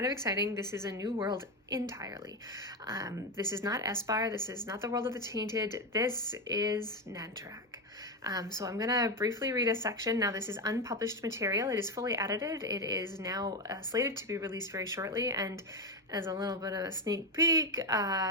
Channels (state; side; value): normal; both; correlation 0.12